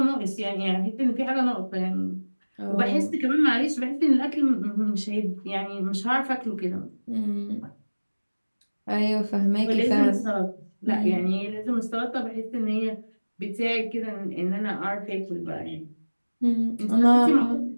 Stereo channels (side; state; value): both; inverted; correlation -1.00